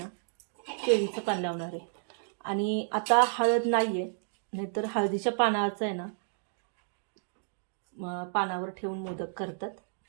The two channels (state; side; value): silent; left; digital silence